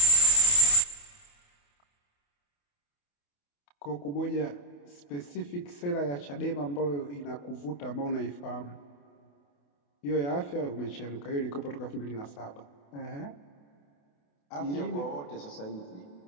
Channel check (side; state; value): right; late; 28 ms